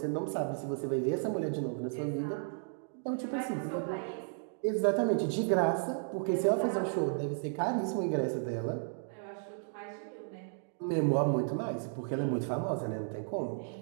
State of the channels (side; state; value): left; silent; digital silence